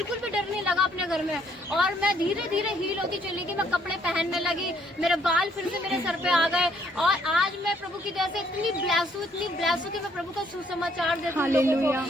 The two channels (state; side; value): normal; both; correlation 0.67